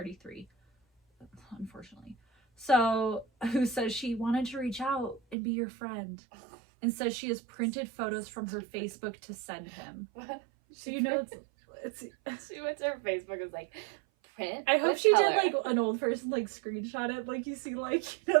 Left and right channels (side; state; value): left; drops out; at 5.4 s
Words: unfortunately. So, who says she wanted to reach out and be your friend, and says she has printed photos from her Facebook to send him. What? So you know it's she went to her Facebook and was like, print? I hope she did like an old person like screenshot it, like you see like, you know,